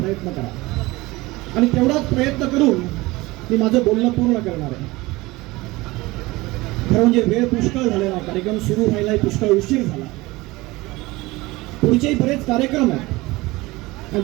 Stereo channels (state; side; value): quieter; left; 21.0 dB